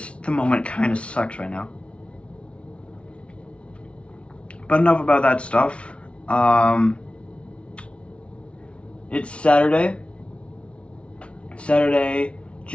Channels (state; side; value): late; right; 0.060 ms